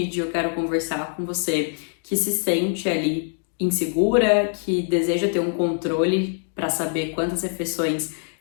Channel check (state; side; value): silent; right; 63 dB below the other